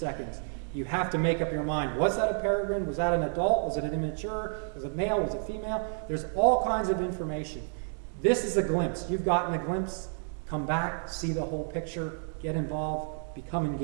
You have to make up your mind. Was that a peregrine? Was that an adult? Was it an immature? Was it male? Was it female? There's all kinds of information. This is a glimpse. You've gotten a glimpse. Come back, see the whole picture, get involved, become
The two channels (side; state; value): left; silent; digital silence